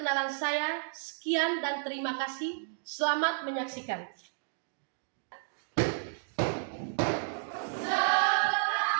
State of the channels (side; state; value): left; silent; digital silence